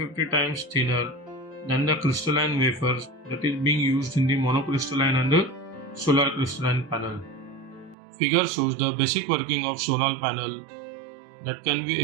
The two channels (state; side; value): drops out; left; at 8.0 s